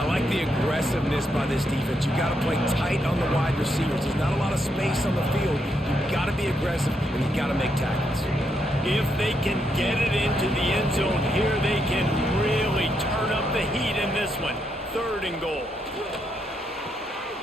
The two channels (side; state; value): both; normal; correlation 0.79